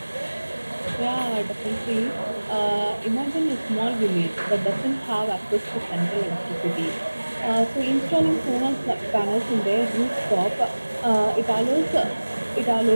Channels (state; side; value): inverted; both; correlation -1.00